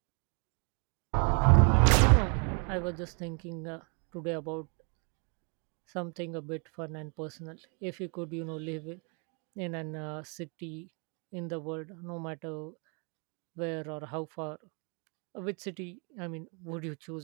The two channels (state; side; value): quieter; left; 38.7 dB